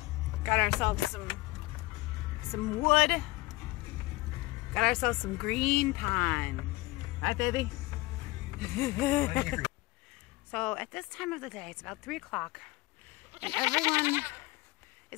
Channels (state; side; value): quieter; right; 20.7 dB